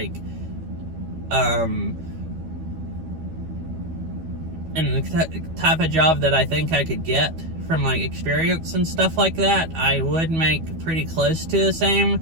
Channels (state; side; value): late; left; 12 ms